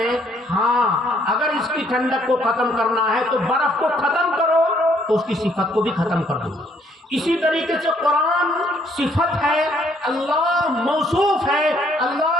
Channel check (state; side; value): normal; both; correlation 0.66